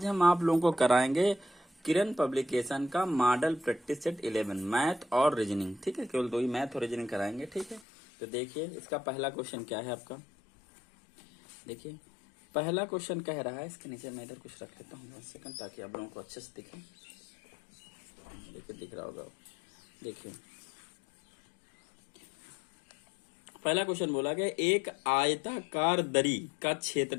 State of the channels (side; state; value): right; drops out; at 7.8 s